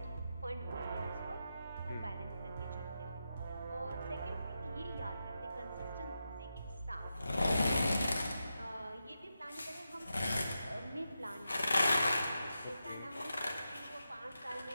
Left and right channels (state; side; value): inverted; both; correlation -0.88